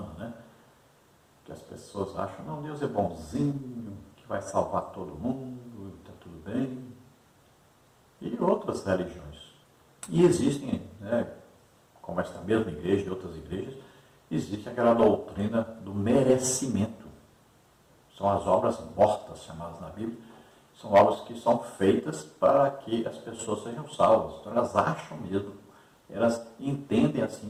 né? Que as pessoas acham, não, Deus é bonzinho, que vai salvar todo mundo, está tudo bem. E outras religiões. E existem, né, como esta mesma igreja e outras igrejas, existe aquela doutrina do merecimento. São as obras mortas, chamadas na Bíblia, são obras que são feitas para que as pessoas sejam salvas. Então elas acham mesmo, elas entendem assim,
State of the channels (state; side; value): identical; both; correlation 1.00